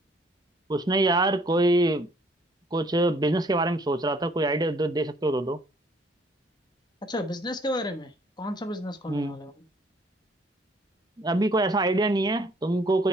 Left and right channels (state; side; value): normal; both; correlation 0.61